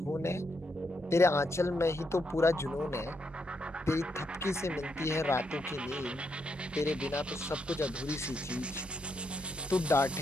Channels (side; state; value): both; normal; correlation 0.79